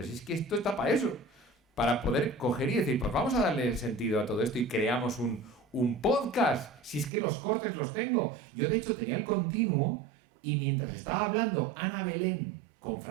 es que esto está para eso, para poder coger y decir, pues vamos a darle sentido a todo esto y creamos un podcast, si es que los cortes los tengo. Yo, de hecho, tenía el continuo, y mientras estaba hablando Ana Belén con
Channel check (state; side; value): drops out; left; at 7.1 s